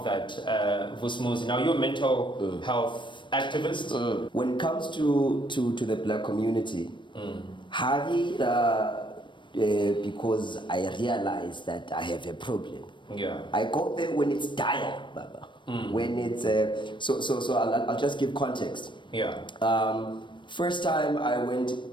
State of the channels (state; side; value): late; right; 0.23 ms